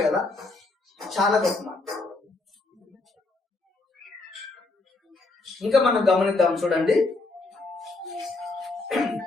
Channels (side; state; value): right; quieter; 3.3 dB